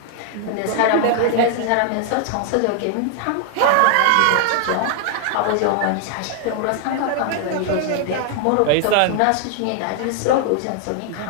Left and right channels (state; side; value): different; both; correlation 0.00